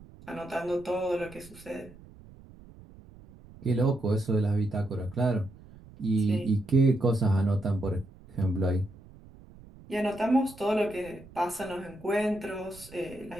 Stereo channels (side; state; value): right; noise; rumble, 21 dB below the sound